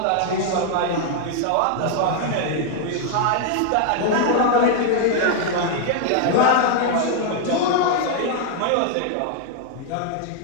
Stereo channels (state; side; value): different; both; correlation 0.00